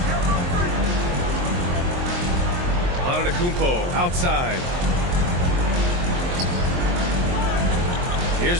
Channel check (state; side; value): late; left; 23 ms